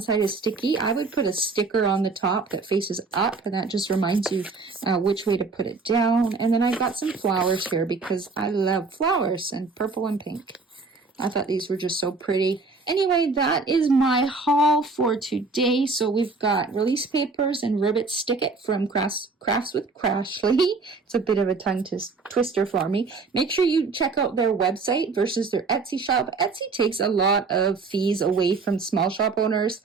is sticky, I would put a sticker on the top that faces up, and that just reminds you which way to put it down. And then I got some flowers here because I love flowers, and purple and pink. I thought these were just so pretty. Anyway, that is my haul for today. So we've got release papers and ribbit stick it from Crafts with Crashley. It's a bit of a tongue twister for me. Make sure you check out their website versus their Etsy shop. Etsy takes a lot of fees away from small shop owners.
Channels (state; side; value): quieter; left; 4.1 dB